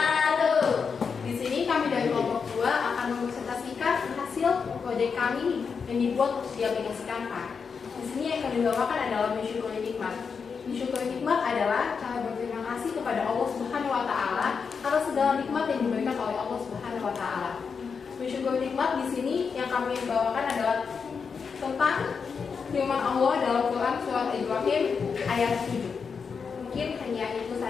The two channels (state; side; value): quieter; right; 5.8 dB